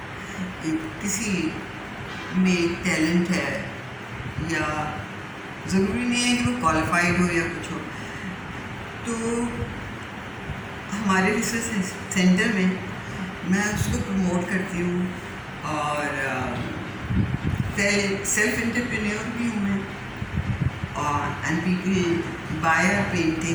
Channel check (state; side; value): identical; both; correlation 1.00